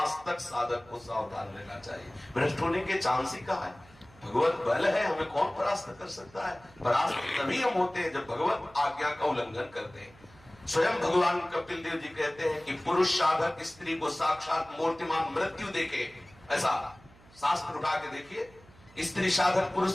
तक साधक को सावधान रहना चाहिए। भ्रष्ट होने के चांस ही कहा है? भगवत बल है, हमें कौन परास्त कर सकता है? परास्त तभी हम होते हैं जब भगवत आज्ञा का उल्लंघन करते हैं। स्वयं भगवान कपिल देव जी कहते हैं कि पुरुष साधक स्त्री को साक्षात मूर्तिमान मृत्यु देखे। ऐसा शास्त्र उठा के देखिए, स्त्री साधक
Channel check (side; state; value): right; noise; hum, 25 dB below the sound